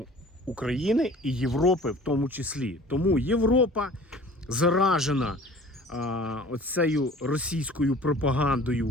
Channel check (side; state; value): both; normal; correlation 0.46